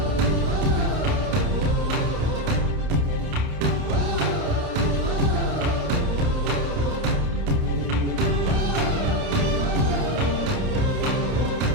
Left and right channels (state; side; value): late; left; 30 ms